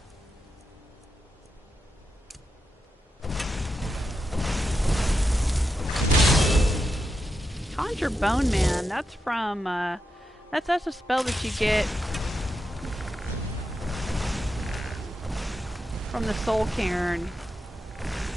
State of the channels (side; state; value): both; normal; correlation 0.86